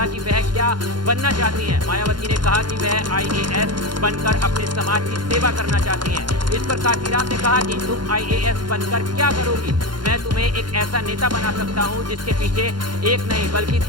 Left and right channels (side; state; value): left; late; 0.71 ms